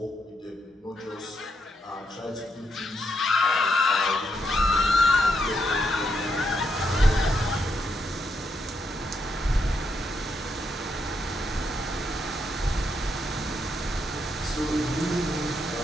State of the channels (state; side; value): normal; both; correlation 0.79